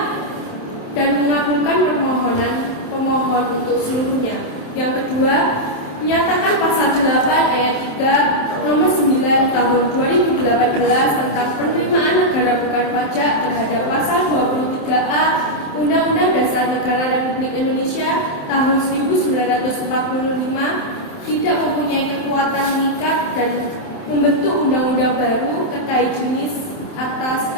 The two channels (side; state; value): right; late; 27 ms